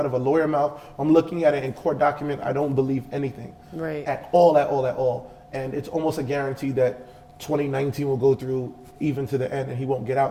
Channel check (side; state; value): both; identical; correlation 1.00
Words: of a lawyer mouth, I'm looking at it in court document, I don't believe anything. At all. And it's almost a guarantee that 2019 will go through even to the end and he won't get